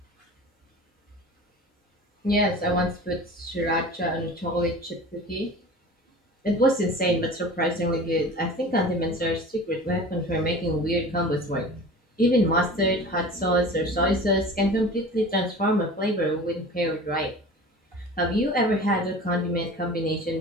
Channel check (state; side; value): normal; both; correlation 0.39